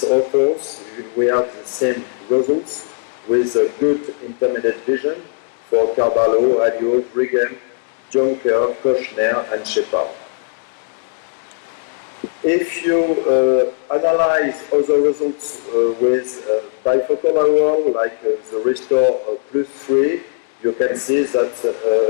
authors, we have the same results with a good intermediate vision for Carvalho, Alliot, Brigham, Jonker, Kochner, and Shepard. If you analyze other results with bifocal IOL, like the Restore Plus 3, you can see that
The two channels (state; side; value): silent; right; digital silence